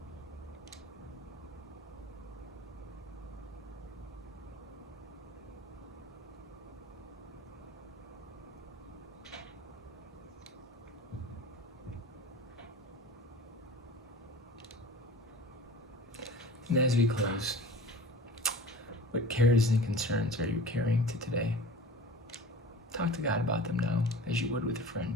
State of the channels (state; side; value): normal; both; correlation 0.40